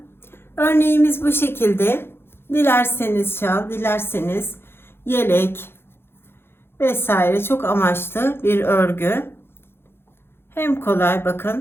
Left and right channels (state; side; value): late; right; 0.11 ms